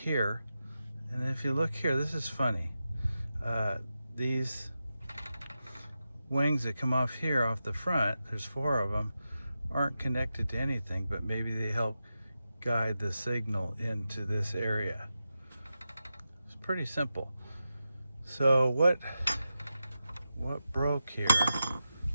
And if you look here, this is funny. These wings that come off here off the front, there's 4 of them, aren't connected to anything, but maybe they help guide the signal into this area. It's pretty simple. So what broke here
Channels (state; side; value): inverted; both; correlation -0.90